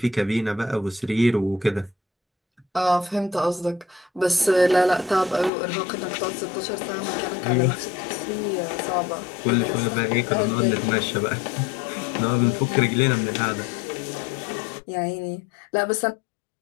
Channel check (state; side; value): drops out; right; at 5.5 s